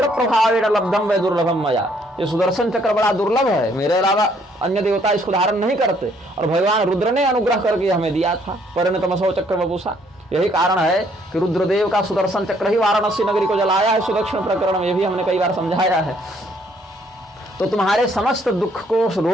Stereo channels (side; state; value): both; normal; correlation 0.66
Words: प्रभावेण लब्धम वै दुर्लभम मया। ये सुदर्शन चक्र बड़ा दुर्लभ है, मेरे अलावा अन्य देवता इसको धारण नहीं करते, और भगवान रुद्र ने अनुग्रह करके हमें दिया था। परिणतमसो चक्र वपुषा। यही कारण है कि रुद्रदेव का सुदर्शन चक्र ही वाराणसी नगरी को जलाया है। सुदक्षिण प्रकरण में ये भी हमने कई बार समझाया है। तो तुम्हारे समस्त दुख को,